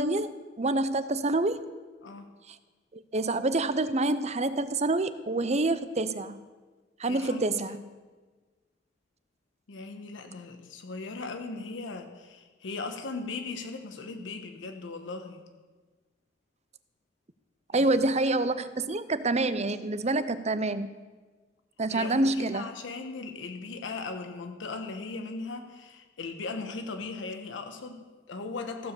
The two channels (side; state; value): both; normal; correlation 0.35